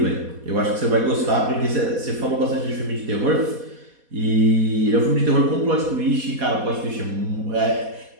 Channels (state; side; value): late; left; 4.2 ms